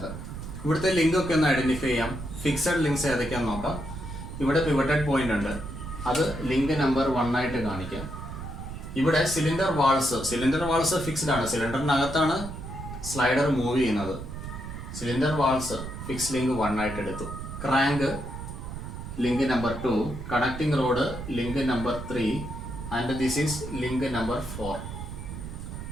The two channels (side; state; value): right; noise; rumble, 9 dB below the sound